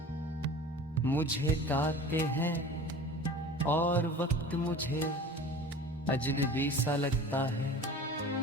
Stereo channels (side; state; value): both; normal; correlation 0.40